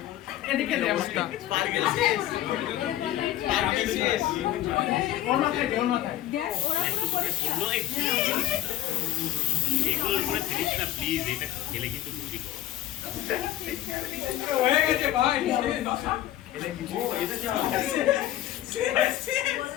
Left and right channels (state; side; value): quieter; right; 13.5 dB